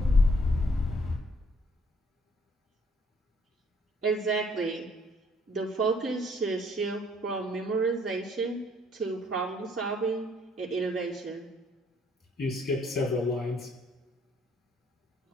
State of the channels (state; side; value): normal; both; correlation 0.64